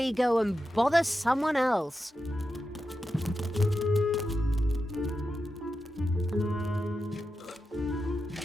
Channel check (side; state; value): both; normal; correlation 0.89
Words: go and bother someone else.